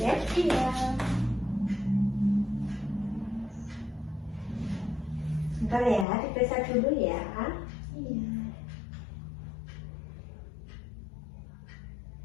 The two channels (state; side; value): drops out; right; at 6.1 s